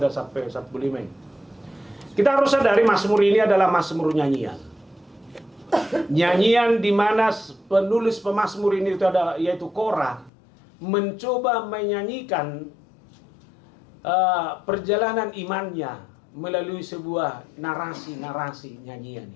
sampai 45. Kita harus sadari Mazmur ini adalah Mazmur nyanyian. Nyanyian di mana penulis pemazmur ini itu ada yaitu Korah mencoba menyanyikan perjalanan imannya melalui sebuah narasi nyanyian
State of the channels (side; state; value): right; drops out; at 10.3 s